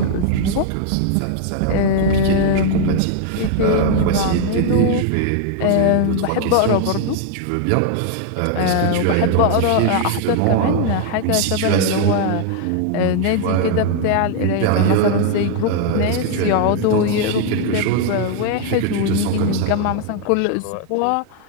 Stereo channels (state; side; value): different; both; correlation 0.00